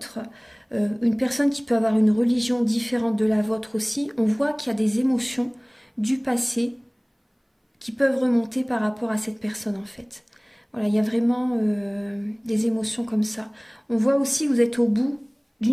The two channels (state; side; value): identical; both; correlation 1.00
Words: une personne qui peut avoir une religion différente de la vôtre aussi. On voit qu'il y a des émotions du passé qui peuvent remonter par rapport à cette personne en fait. Voilà, il y a vraiment des émotions comme ça. On voit aussi que vous êtes au bout